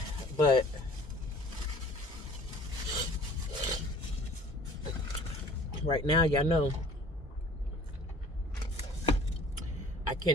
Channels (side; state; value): both; normal; correlation 0.50